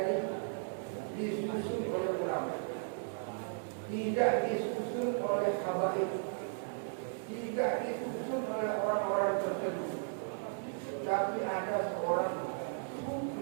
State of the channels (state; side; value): silent; left; digital silence